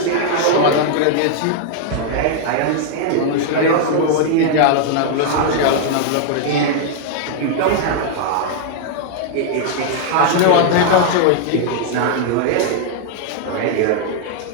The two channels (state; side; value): different; both; correlation -0.01